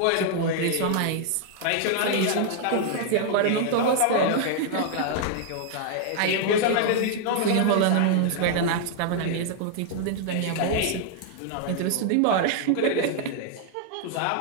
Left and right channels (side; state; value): both; different; correlation 0.00